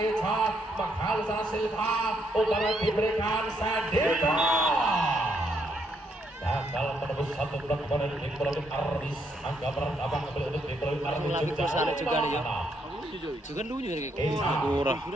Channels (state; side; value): normal; both; correlation 0.74